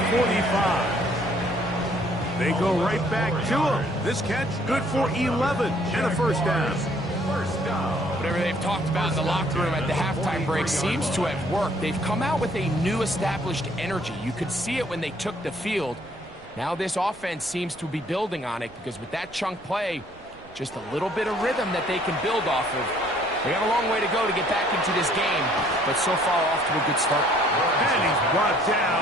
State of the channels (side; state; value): right; noise; rumble, 24 dB below the sound